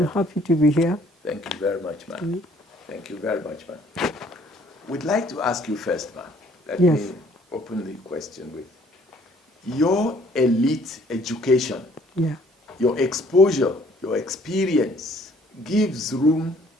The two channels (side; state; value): both; normal; correlation 0.60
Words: happy to be here. Thank you very much, ma'am. Thank you very much, ma'am. We'd like to ask you first, ma'am. Let me open the question with your elite education, your exposure, your experience gives room